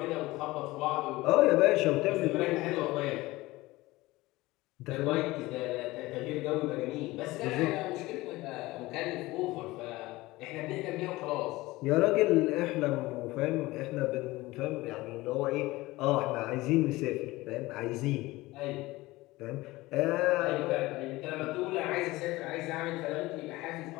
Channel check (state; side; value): quieter; right; 19.6 dB